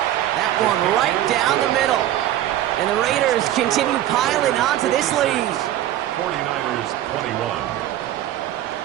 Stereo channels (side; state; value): left; quieter; 13.0 dB